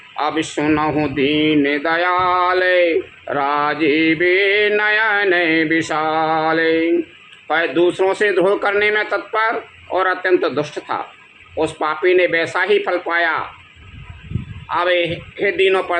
अब सुनहु दीन दयाले, राजीवे नयन विशाले। वह दूसरों से द्रोह करने में तत्पर और अत्यंत दुष्ट था। उस पापी ने वैसा ही फल पाया। अब हे दीनों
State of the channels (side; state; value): both; identical; correlation 1.00